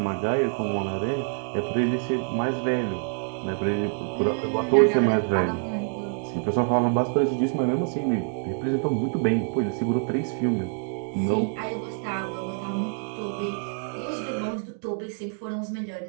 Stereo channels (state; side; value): silent; left; 58 dB below the other